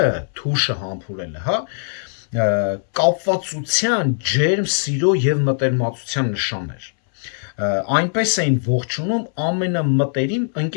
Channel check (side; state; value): right; silent; 63 dB below the other